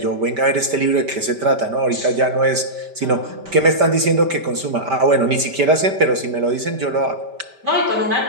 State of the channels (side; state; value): left; late; 5.1 ms